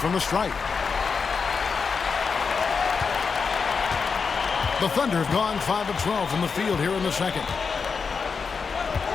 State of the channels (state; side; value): quieter; right; 5.4 dB